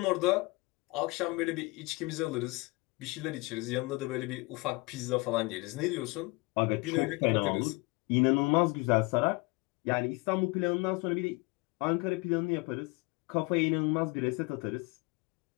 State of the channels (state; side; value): quieter; right; 25.9 dB